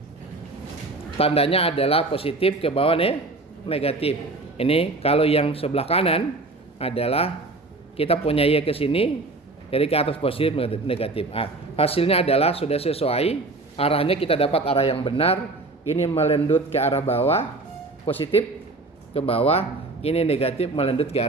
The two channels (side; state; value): left; quieter; 3.2 dB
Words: tandanya adalah positif, ke bawah negatif. Ini kalau yang sebelah kanan adalah kita punya y ke sini, jadi ke atas positif negatif. Hasilnya adalah sudah sesuai, arahnya kita dapat arah yang benar. Ini melendut ke arah bawah, positif ke bawah, ini negatif melendut ke